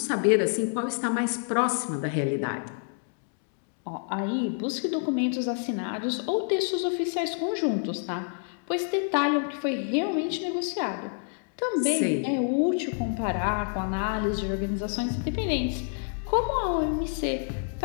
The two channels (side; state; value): right; silent; 59 dB below the other